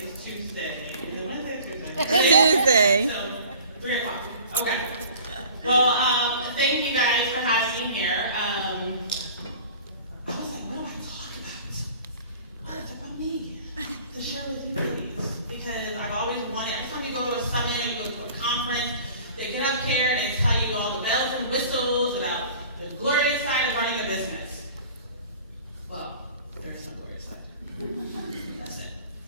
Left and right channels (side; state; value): both; inverted; correlation -0.46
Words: Tuesday. Is it Wednesday or Tuesday? Tuesday. So, 3 o'clock. Okay. Well, thank you guys for having me here. I was like, what do I talk about? What's about me? To share with you ladies. Because I've always wanted, every time you go to a summit and you go to a conference, they get up here and they tell you all the bells and whistles about the glorious side of running a business. Well, there's no glorious side. That's it.